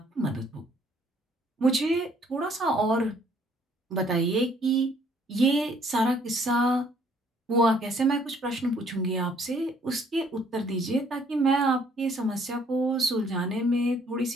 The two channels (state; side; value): normal; both; correlation 0.62